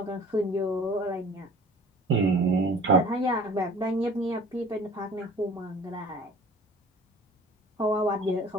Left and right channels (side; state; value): both; normal; correlation 0.47